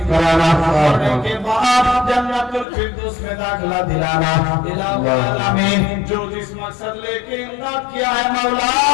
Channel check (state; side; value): drops out; right; at 2.7 s